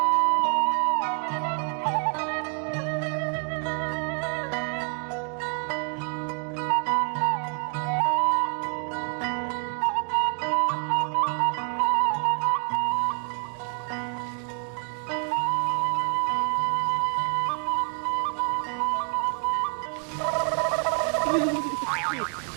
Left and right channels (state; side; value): quieter; left; 39.9 dB